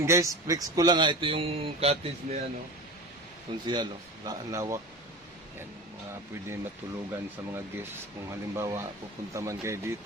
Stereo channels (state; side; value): normal; both; correlation 0.31